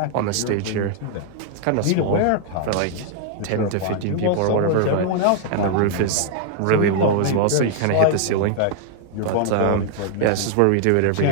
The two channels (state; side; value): different; both; correlation 0.00